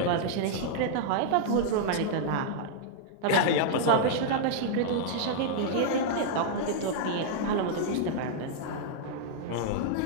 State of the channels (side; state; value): both; different; correlation -0.01